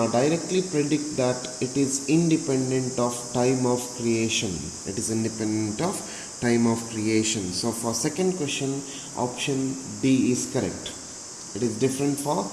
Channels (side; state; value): both; identical; correlation 1.00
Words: predict that it is independent of time of creation. It is independent of time of creation. So for second question, option D is correct. It is different for